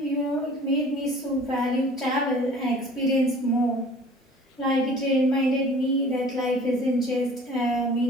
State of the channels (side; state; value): both; normal; correlation 0.47